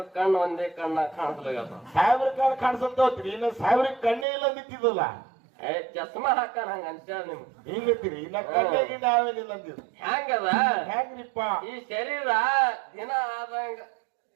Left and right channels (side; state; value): left; drops out; at 4.2 s